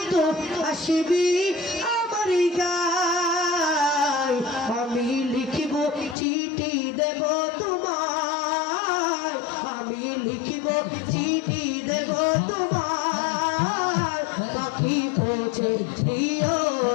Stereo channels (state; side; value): drops out; right; at 6.2 s